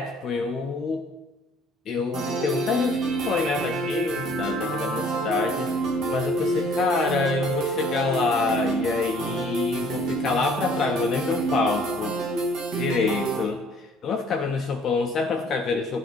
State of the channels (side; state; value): both; normal; correlation 0.57